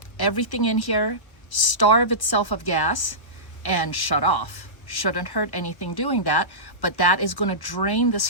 everything in here, starve itself of gas, and shut off. Shouldn't hurt anything doing that, but that is going to drain this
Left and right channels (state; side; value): late; right; 1.0 ms